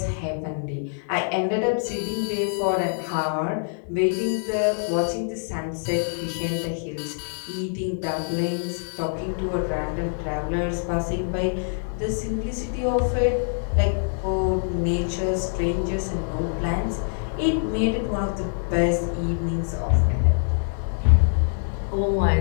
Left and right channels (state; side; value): silent; right; digital silence